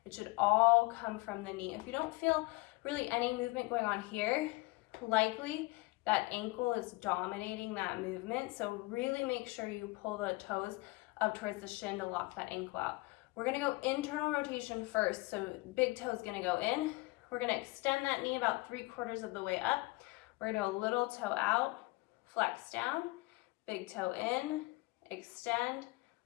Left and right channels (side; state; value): right; quieter; 23.2 dB